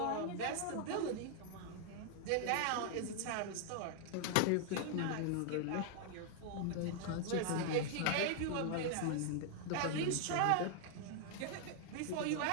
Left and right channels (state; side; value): different; both; correlation 0.00